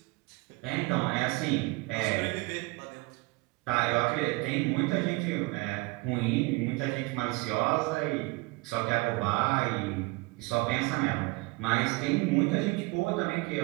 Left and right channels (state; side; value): quieter; left; 24.5 dB